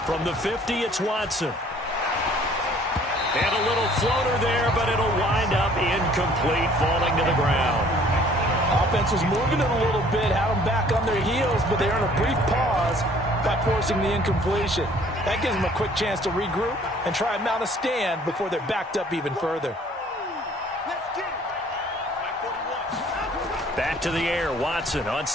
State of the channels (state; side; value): normal; both; correlation 0.56